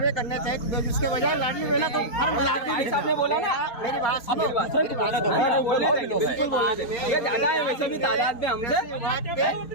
करना चाहिए, तो उसके बजाय लाडली बहना तो फार्म भरा ने बोला ना, मेरी बात सुनो। ये ज्यादा है वैसे भी तादाद में हमसे,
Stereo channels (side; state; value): right; late; 4.3 ms